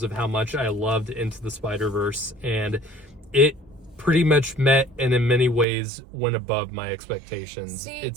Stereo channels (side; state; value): left; drops out; at 5.7 s